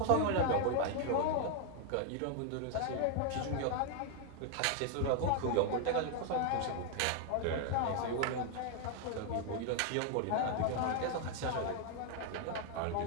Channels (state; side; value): different; both; correlation 0.00